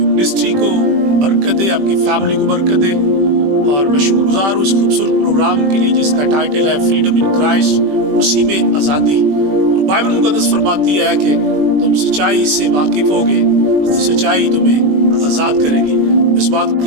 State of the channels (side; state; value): left; late; 21 ms